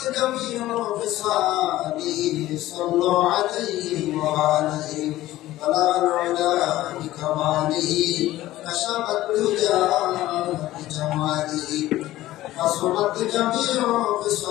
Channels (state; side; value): quieter; right; 15.6 dB